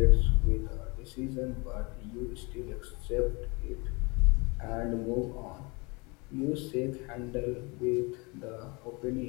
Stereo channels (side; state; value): right; quieter; 28.0 dB